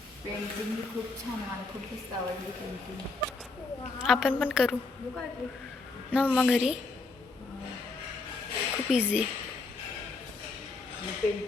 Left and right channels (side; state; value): right; quieter; 3.7 dB